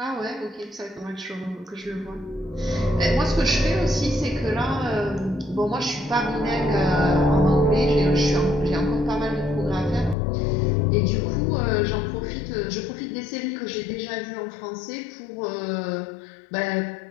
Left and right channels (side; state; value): right; drops out; at 10.2 s